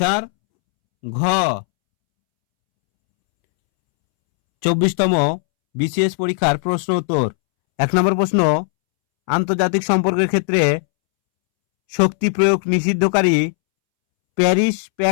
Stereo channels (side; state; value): right; silent; 68 dB below the other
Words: ঘ। 24তম বিসিএস পরীক্ষার প্রশ্ন উত্তর। 1 নম্বর প্রশ্ন, আন্তর্জাতিক সম্পর্কের ক্ষেত্রে শক্তি প্রয়োগ নিষিদ্ধকারী প্যারিস